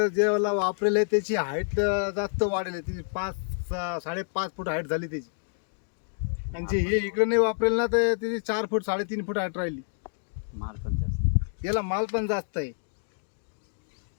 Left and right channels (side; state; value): right; silent; digital silence